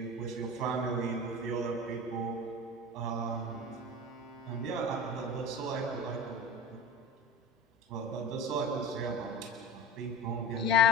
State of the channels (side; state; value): both; normal; correlation 0.33